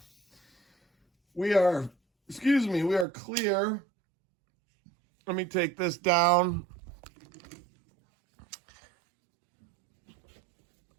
We are clear. Let me take this down.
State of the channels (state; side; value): drops out; left; at 3.1 s